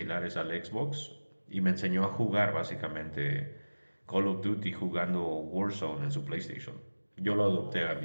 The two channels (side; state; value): both; inverted; correlation -1.00